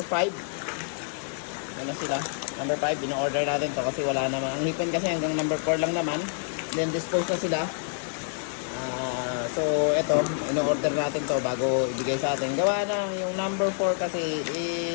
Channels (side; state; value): right; silent; digital silence